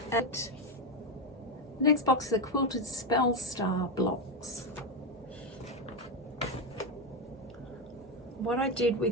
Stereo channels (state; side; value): normal; both; correlation 0.10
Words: And the next box is the Quilted Spell Star blocks. What I did